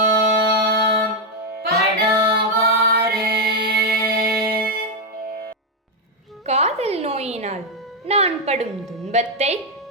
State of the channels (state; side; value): normal; both; correlation 0.02